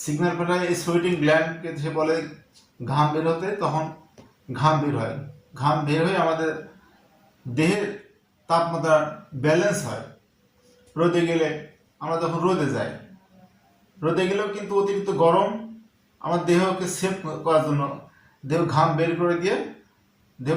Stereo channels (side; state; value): both; identical; correlation 1.00